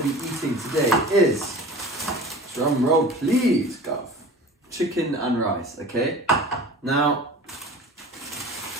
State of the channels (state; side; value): normal; both; correlation 0.39